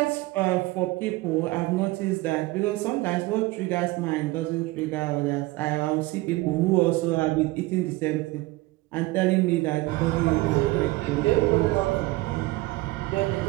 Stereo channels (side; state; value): left; quieter; 20.3 dB